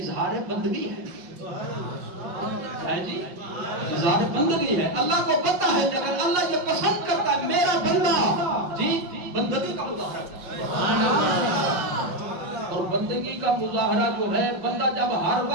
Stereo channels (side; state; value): left; late; 5.6 ms